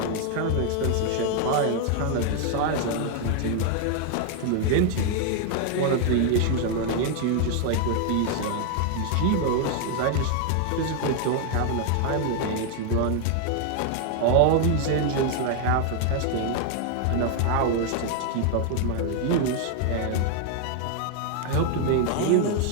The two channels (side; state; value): both; different; correlation 0.00